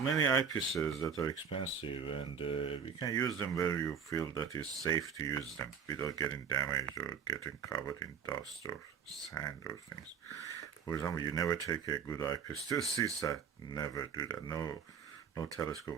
eyepieces that are expensive, and you can use them where you feel that it's safe to use them without getting damaged or getting covered in dust or sand or things. For example, you never take a good eyepiece to the seaside. Never do that. No, no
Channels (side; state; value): left; quieter; 6.9 dB